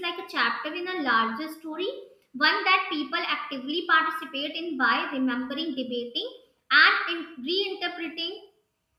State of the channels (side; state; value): both; identical; correlation 1.00